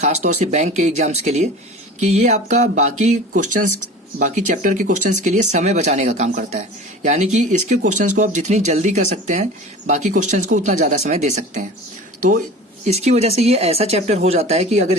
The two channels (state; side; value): normal; both; correlation 0.38